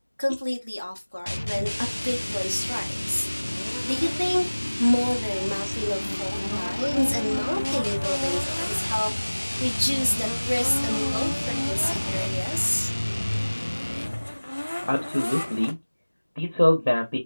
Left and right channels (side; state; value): both; inverted; correlation -1.00